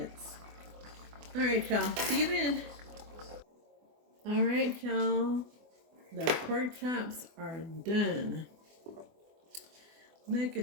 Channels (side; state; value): left; late; 24 ms